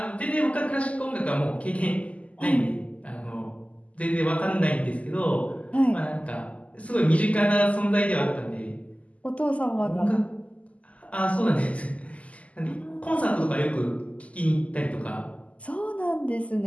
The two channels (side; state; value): right; late; 0.068 ms